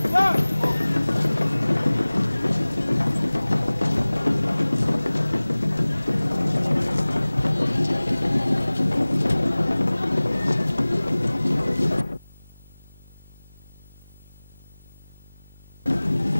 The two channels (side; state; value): both; inverted; correlation -1.00